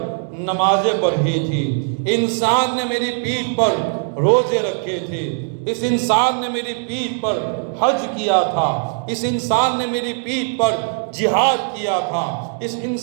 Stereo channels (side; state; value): left; silent; digital silence